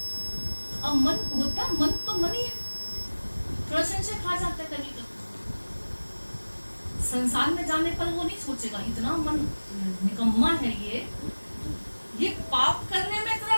अब मन होता, मन तो मन ही है, थोड़ा संशय खा जाता है कभी कभी। संसार में जाने पर वो नहीं सोचेगा, इतना मन निकम्मा है ये पाप करने में इतना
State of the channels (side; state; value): both; inverted; correlation -1.00